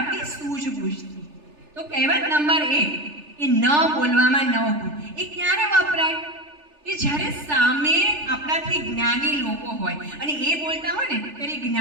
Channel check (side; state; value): left; late; 3.4 ms